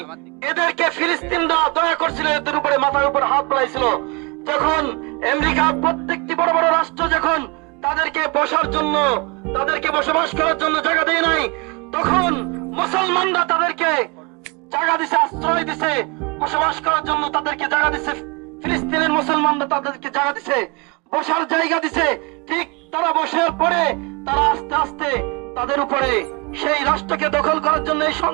এদেরকে ফিলিস্তিনরা দয়া করছিল, এদের উপরে মাথার উপর হাত বুলাইছিল। যখন আমেরিকা প্রত্যেকটি বড় বড় রাষ্ট্র যখন তাদেরকে বসার জন্য, তাদেরকে বসবাস করার জন্য জায়গা দেয় নাই, তখন মুসলমানরা তাদেরকে জায়গা দিছে, আশ্রয় দিছে, বসবাস করার জন্য তাদেরকে জায়গা দিছে। ফিলিস্তিনের মুসলমানরা তাদেরকে জায়গা দিছে, বসার জায়গা দিছে। ঠিক তারা বসার পরে তারা আস্তে আস্তে তাদের উপরে সেই রাষ্ট্রকে দখল করার জন্য এই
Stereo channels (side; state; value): left; quieter; 29.4 dB